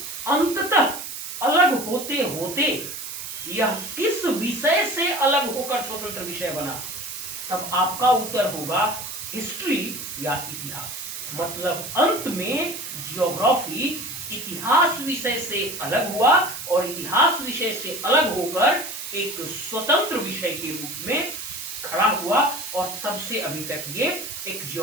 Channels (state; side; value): noise; right; hiss, 8 dB below the sound